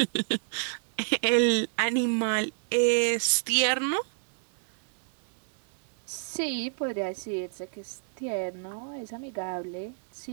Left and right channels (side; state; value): left; silent; 58 dB below the other